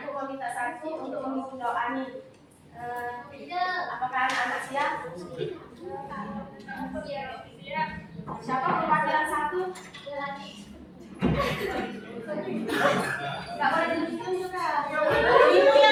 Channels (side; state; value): both; identical; correlation 1.00